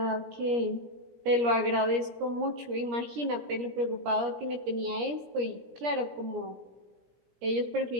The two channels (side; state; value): left; late; 17 ms